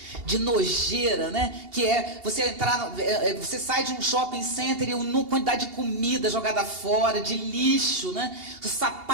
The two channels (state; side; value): late; left; 2.8 ms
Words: de nojeira, né? Que é você entrar, você sai de um shopping center e uma quantidade de comida jogada fora, de lixo, né? Os